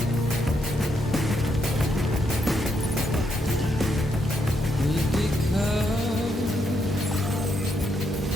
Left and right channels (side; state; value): both; normal; correlation 0.78